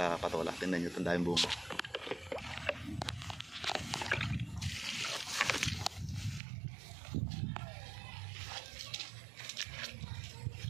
Patola, tingnan nyo tandayang bunga.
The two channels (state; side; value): drops out; left; at 6.4 s